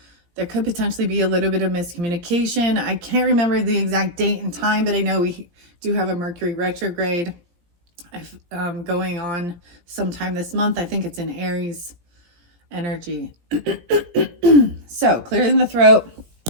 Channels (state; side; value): late; left; 17 ms